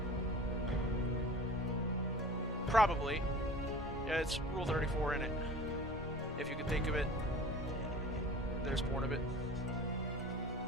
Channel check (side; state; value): both; normal; correlation 0.40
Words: Probably. Yeah, it's Rule 34 in it. If you can think of it, there's porn of it.